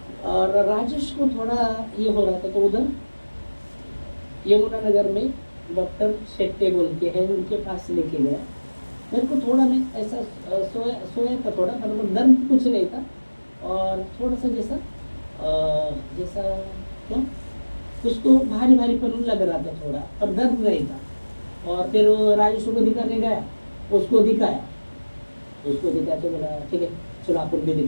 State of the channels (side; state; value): both; inverted; correlation -1.00